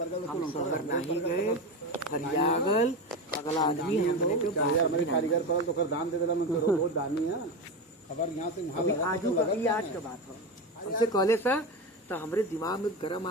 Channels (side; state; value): both; normal; correlation 0.19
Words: हम शहर नहीं गए हरियागल अगला आदमी हमने के यार हमारे कारीगर पड़ल तो कर दान दे देला मैं तो बहुत दानी है खबर यहाँ से अभी आजू का ये आज का बात हो हमसे कहले सा तो हमरे दिमाग में गरम